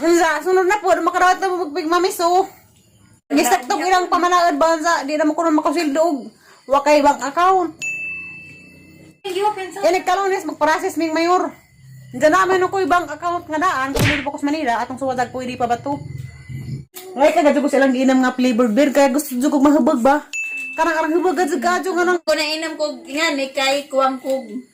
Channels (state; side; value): identical; both; correlation 1.00